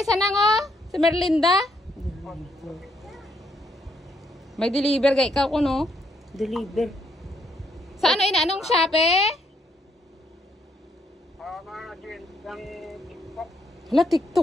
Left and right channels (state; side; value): normal; both; correlation 0.73